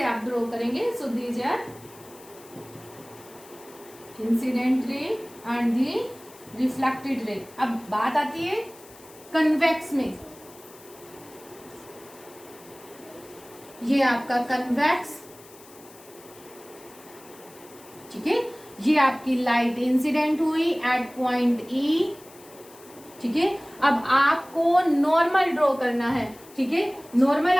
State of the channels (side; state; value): left; noise; hiss, 22 dB below the sound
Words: आप ड्रॉ करेंगे। So these are incident ray and the reflected ray. अब बात आती है कन्वेक्स में, ये आपका कन्वेक्स, ठीक है। ये आपकी लाइट इंसिडेंट हुई एट पॉइंट ई, ठीक है। अब आपको नॉर्मल ड्रॉ करना है, ठीक है। नॉर्मल